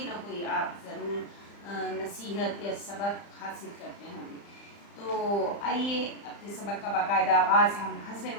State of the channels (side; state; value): right; late; 35 ms